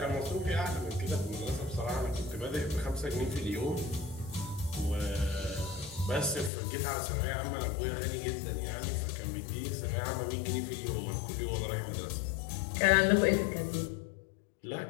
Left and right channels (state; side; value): drops out; right; at 6.5 s